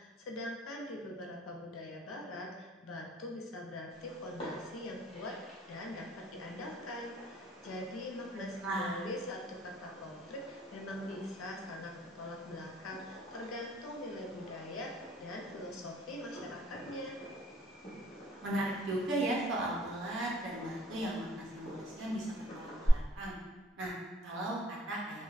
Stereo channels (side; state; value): both; normal; correlation 0.58